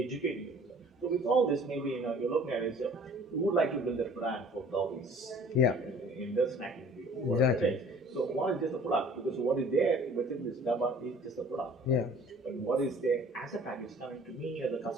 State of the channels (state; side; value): normal; both; correlation 0.51